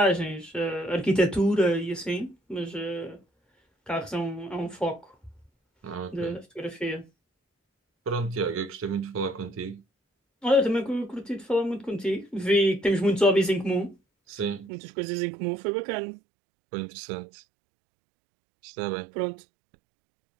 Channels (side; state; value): left; drops out; at 14.7 s